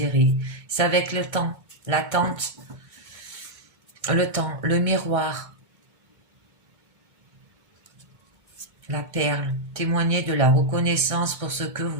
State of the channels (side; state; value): left; late; 2.2 ms